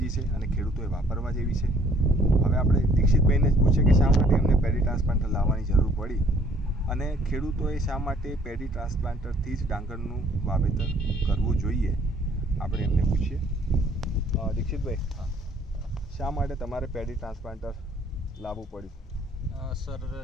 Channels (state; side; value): normal; both; correlation 0.60